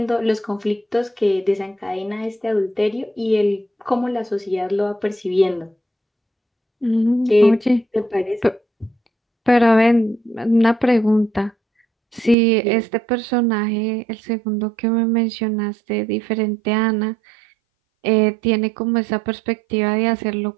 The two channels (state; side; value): drops out; left; at 12.4 s